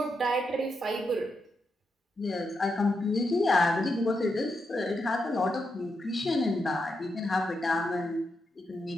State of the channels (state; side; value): normal; both; correlation 0.84